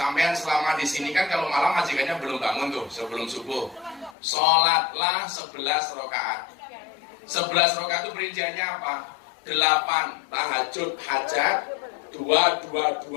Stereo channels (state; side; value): drops out; right; at 4.2 s